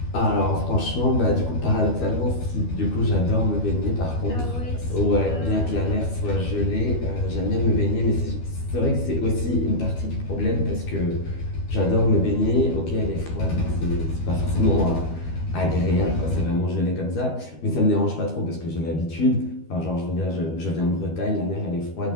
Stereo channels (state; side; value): late; right; 12 ms